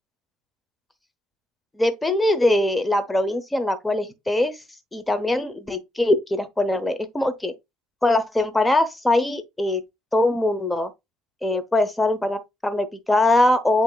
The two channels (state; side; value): normal; both; correlation 0.83